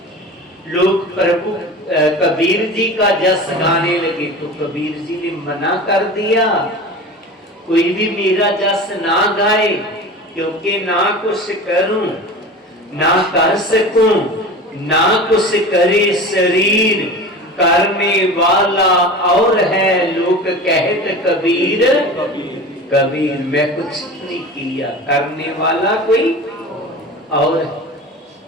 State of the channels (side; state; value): both; normal; correlation 0.34